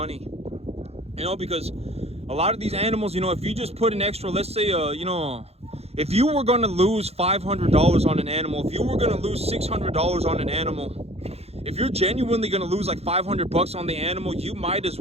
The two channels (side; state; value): left; late; 0.30 ms